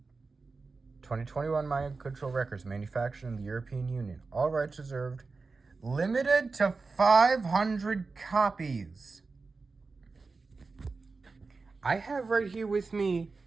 2021 Mind Control Records, manufactured in the European Union. All rights reserved. Limited to 500 copies. I have right here with me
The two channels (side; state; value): left; quieter; 4.1 dB